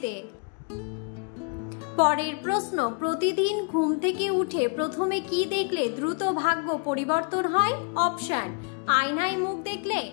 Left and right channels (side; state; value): right; quieter; 35.3 dB